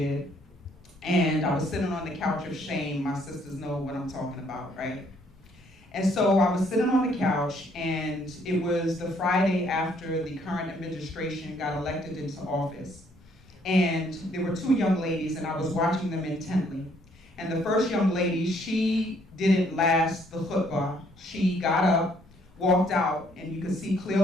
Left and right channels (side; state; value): both; normal; correlation 0.66